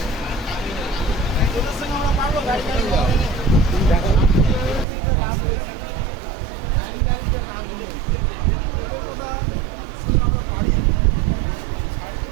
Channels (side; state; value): left; drops out; at 4.9 s